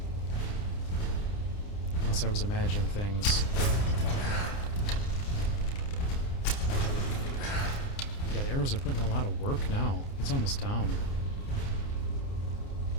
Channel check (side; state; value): right; late; 29 ms